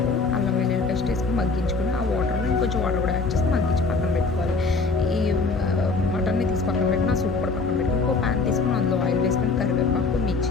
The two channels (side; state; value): right; quieter; 4.1 dB